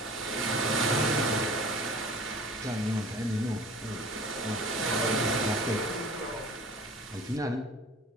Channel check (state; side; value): normal; both; correlation 0.43